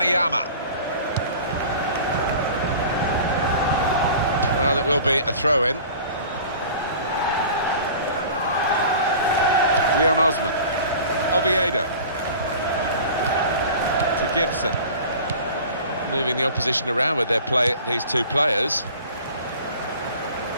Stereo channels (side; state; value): both; inverted; correlation -0.42